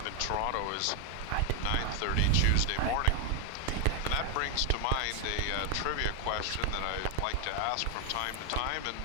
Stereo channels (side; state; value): both; different; correlation 0.01